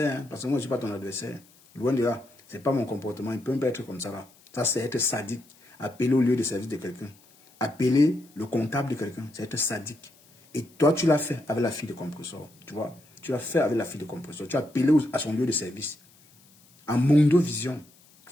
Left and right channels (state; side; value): noise; left; hiss, 28 dB below the sound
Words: hein, parce que moi, je ne suis pas ton adversaire. Loin de là. Ce n'est pas mon comportement. Il peut même pas être comme ça là. Ça, c'est être sadique. Appeler au lieu de service de quelqu'un. Appeler le comptable de quelqu'un. C'est être sadique. Et toi, tu l'as fait avec la fille de compresseur. Tu vois. Tu l'as fait avec la fille de compresseur. Tu as appelé à son lieu de service. En Mondo Vision.